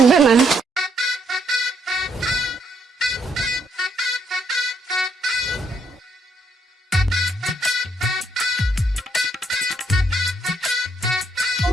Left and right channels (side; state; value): both; normal; correlation 0.73